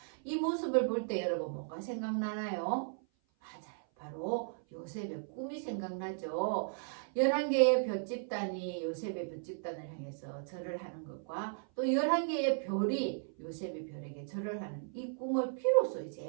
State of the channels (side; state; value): left; silent; 54 dB below the other